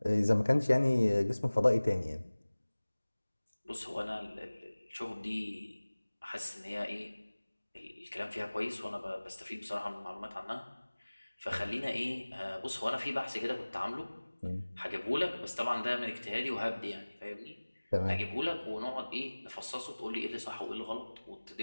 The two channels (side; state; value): both; inverted; correlation -1.00